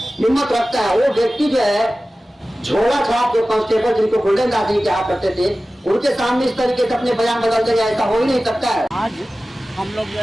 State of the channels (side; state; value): both; normal; correlation 0.96